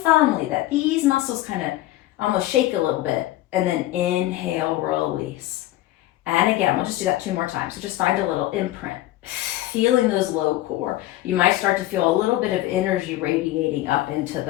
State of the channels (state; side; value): quieter; right; 15.6 dB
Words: firmly that these muscles kind of almost shake a little bit, and then inhale, release. And again, we'll just do that 2 more times. So just find a little imprint, feeling those low core. You might start to feel a little bit of energy radiating up into